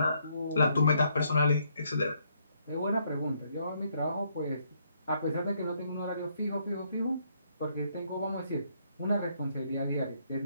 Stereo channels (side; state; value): both; inverted; correlation -0.71